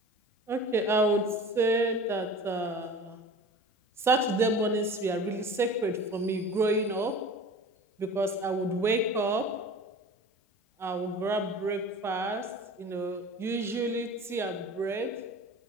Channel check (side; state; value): both; normal; correlation 0.39